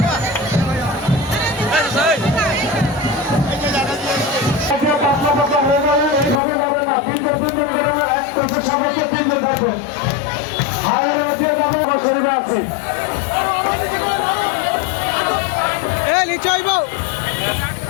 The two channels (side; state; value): right; drops out; at 6.4 s